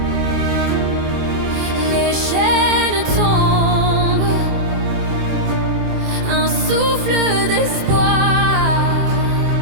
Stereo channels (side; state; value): left; late; 24 ms